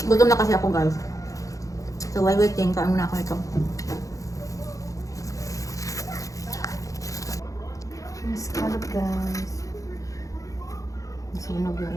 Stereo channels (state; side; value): late; right; 0.16 ms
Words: Gutom na kasi ako, guys. So, while waiting, kain muna ako ito. Scallop, guys. Sunog yung